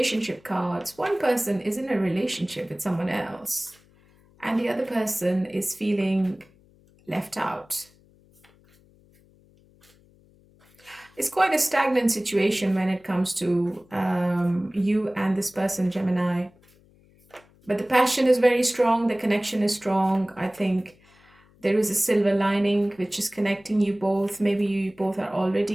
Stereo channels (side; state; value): left; noise; hum, 30 dB below the sound